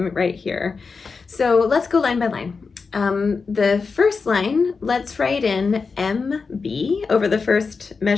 right here. So let's go line by line. The first line, let's write in MB over the first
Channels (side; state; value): right; quieter; 4.8 dB